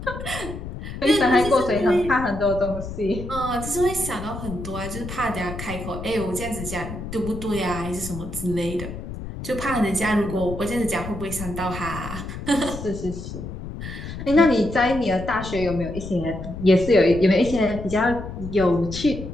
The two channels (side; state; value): left; noise; rumble, 9 dB below the sound